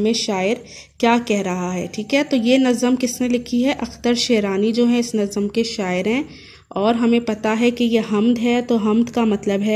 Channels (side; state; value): both; identical; correlation 1.00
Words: शायर क्या कह रहा है। ठीक है, तो ये नज़म किसने लिखी है? अख्तर शेरानी जो है इस नज़म के शायर हैं। और हमें पता है कि ये हम्द है, तो हम्द का मतलब